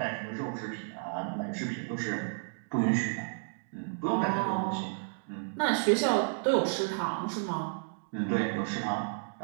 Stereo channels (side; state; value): left; silent; digital silence